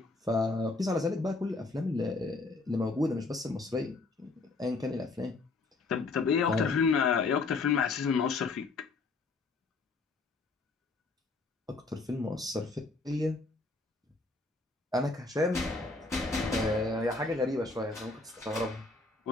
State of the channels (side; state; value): right; quieter; 3.7 dB